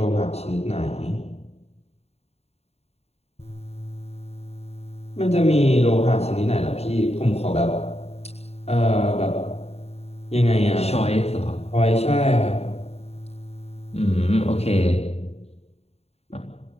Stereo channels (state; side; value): late; right; 0.30 ms